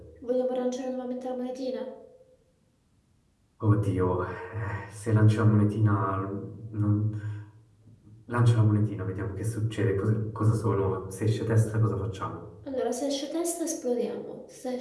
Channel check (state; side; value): identical; both; correlation 1.00